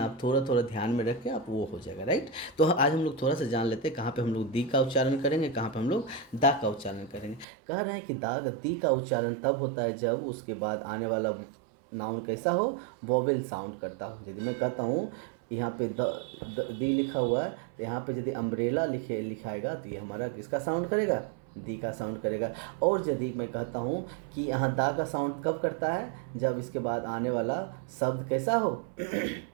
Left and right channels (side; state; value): left; drops out; at 7.5 s